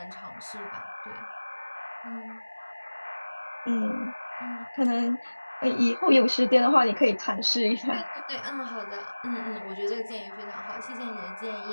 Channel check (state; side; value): inverted; both; correlation -1.00